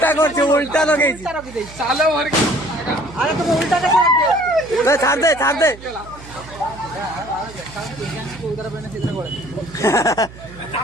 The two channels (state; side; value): noise; right; hum, 18 dB below the sound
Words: করছে উল্টা লগাইছি চালো ভর আরে তুমি উল্টাটা করে দিও ছাড় দে উদার পেনে সিধা করে